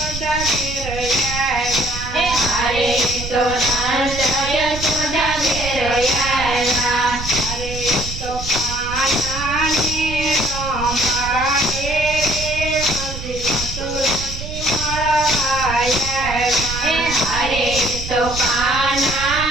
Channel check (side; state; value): right; noise; rumble, 8 dB below the sound